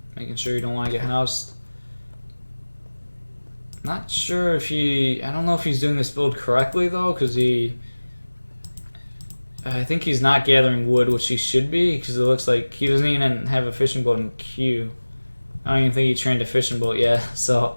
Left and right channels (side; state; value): both; inverted; correlation -1.00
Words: Making sure you don't want to get housed. Not sure if I don't know if he's doing this build correctly though, because I think he's not gathering wood, which he should be, because it looks like he doesn't even have a fishing boat in queue. I don't even think he trained a fishing boat yet, so